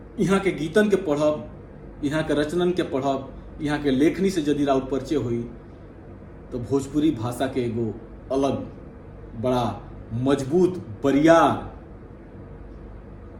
यहाँ के गीतन के पढ़ब, यहाँ के रचनन के पढ़ब, यहाँ के लेखनी से यदि राउर परिचय हुई तो भोजपुरी भाषा के एगो अलग बड़ा मजबूत बरियार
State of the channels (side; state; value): both; identical; correlation 1.00